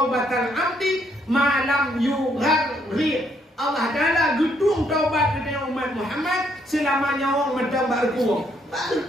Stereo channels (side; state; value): both; normal; correlation 0.71